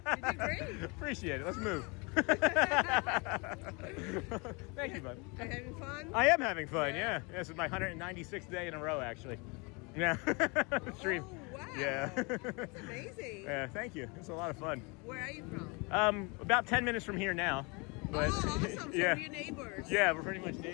did great. Appreciate it. Let's move. Thank you, bud. Are you having fun? I am having fun, yeah. This is my 196th day in a row, actually. Yeah. Stream. Oh, wow. Yeah. That's amazing. Yeah, thank you. It's a lot of fun. Where are you from? About 10 minutes from here now. But, oh, awesome. So yeah. we're neighbors. Yeah, we're pretty much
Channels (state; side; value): quieter; right; 29.6 dB